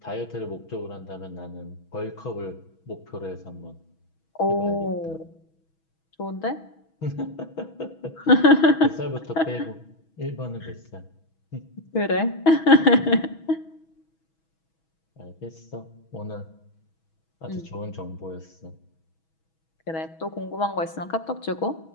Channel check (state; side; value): late; right; 6.2 ms